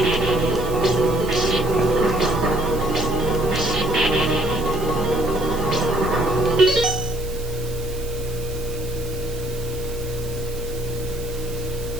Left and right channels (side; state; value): right; noise; hiss, 16 dB below the sound